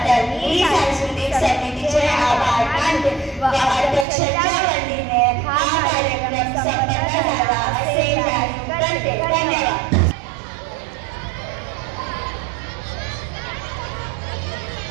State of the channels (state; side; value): drops out; left; at 4.0 s